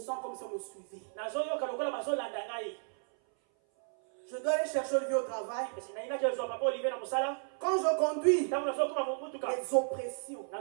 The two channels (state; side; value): silent; left; 55 dB below the other